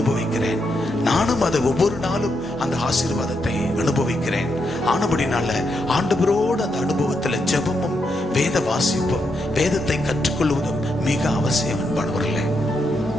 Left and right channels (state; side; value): normal; both; correlation 0.81